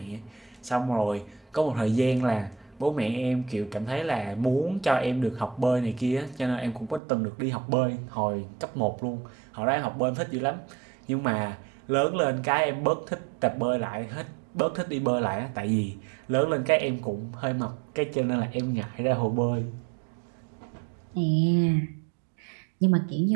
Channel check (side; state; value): left; drops out; at 7.0 s